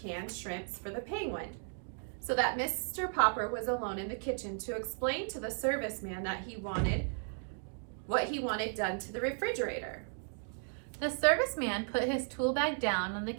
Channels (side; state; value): left; silent; 54 dB below the other